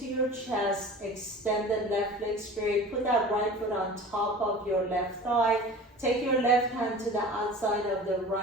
your chest. Extend the left leg straight. Put that right foot on top of your left thigh. Take your left hand to the outside of the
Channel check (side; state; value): both; normal; correlation 0.39